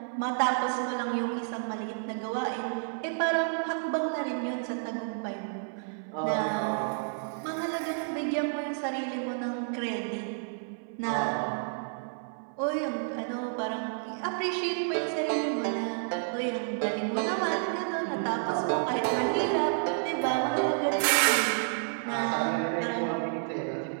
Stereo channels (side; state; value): left; silent; 58 dB below the other